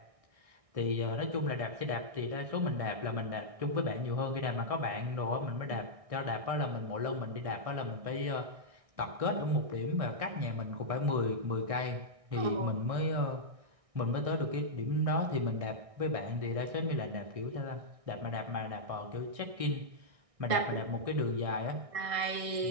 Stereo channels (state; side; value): late; left; 1.6 ms